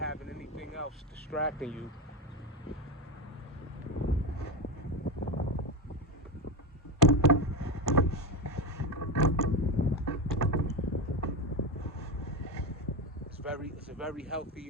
anything else distracting you. It's a very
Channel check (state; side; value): normal; both; correlation 0.16